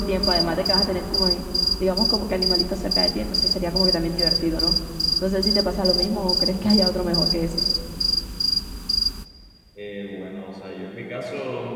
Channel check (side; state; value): both; identical; correlation 1.00